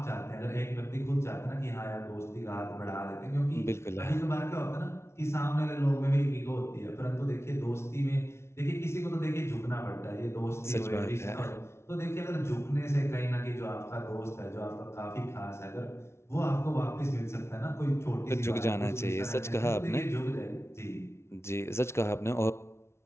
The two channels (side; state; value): right; late; 0.13 ms